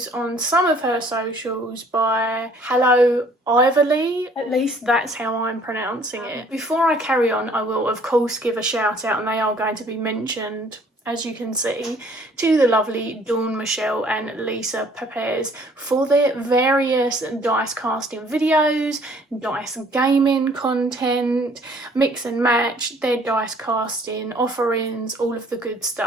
on some of her socials by 𝗗𝗶𝗰𝗲, at least that's how I'm pronouncing it. Before I carry on, I will of course give a shout out, and they are going to be mentioned, as you can see, to the lovely Dawn Michelle and Lisa Pepez for their various dice casting videos, dice gaming content, mix and match, their dice casting offerings, all of the good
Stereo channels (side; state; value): both; normal; correlation 0.57